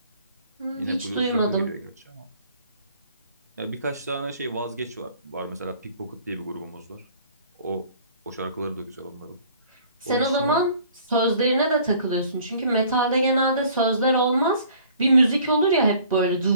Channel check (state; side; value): inverted; both; correlation -0.54